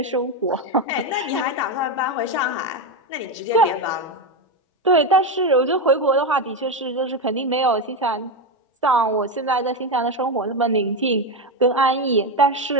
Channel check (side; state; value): both; normal; correlation 0.12